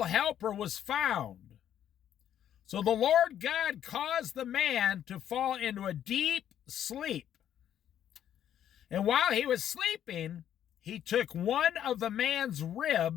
helper was found. So the Lord God caused the man to fall into a deep sleep. And while he was sleeping, he took one of the man's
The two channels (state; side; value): quieter; right; 10.4 dB